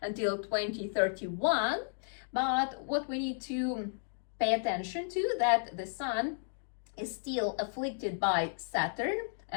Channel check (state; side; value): silent; right; digital silence